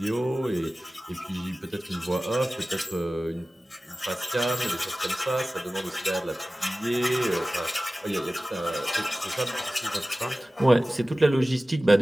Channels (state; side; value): normal; both; correlation 0.97